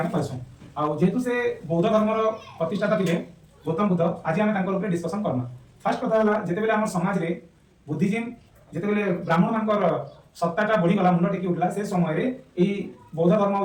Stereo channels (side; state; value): both; identical; correlation 1.00